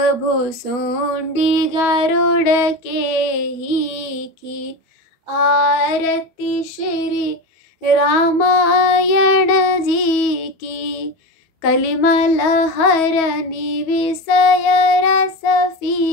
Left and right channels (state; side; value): late; right; 12 ms